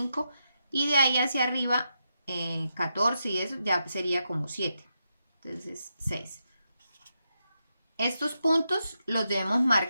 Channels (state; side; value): inverted; both; correlation -0.85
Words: y de ahí hacia arriba 14 y eso ya sería como 7. Entonces 6. Estos puntos los debemos